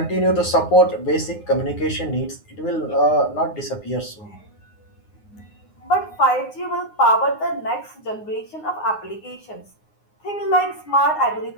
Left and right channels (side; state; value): right; late; 9.6 ms